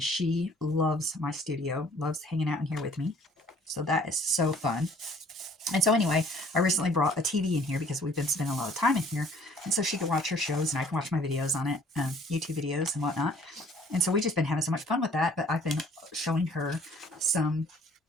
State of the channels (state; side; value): normal; both; correlation 0.56